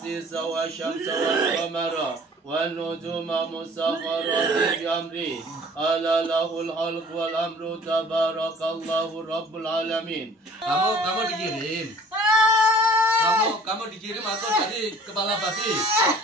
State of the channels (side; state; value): both; normal; correlation 0.51